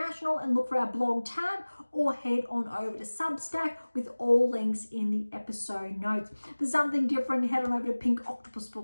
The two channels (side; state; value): both; inverted; correlation -1.00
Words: and look for our blog tab, or head on over to Substack with all links in the episode notes. For something different, head on over to Pink Octopus